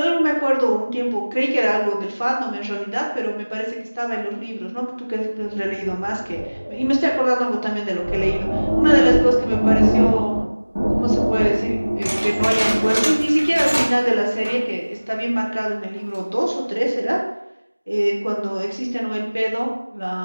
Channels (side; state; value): both; inverted; correlation -1.00